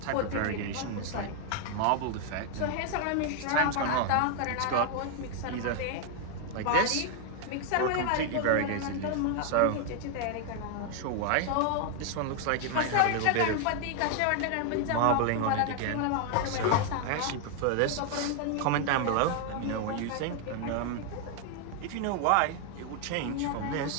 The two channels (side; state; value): both; different; correlation 0.00